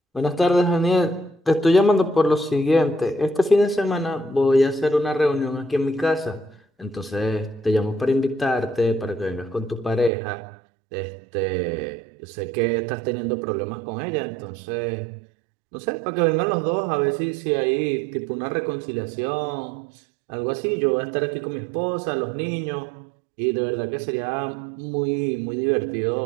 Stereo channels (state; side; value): drops out; left; at 10.1 s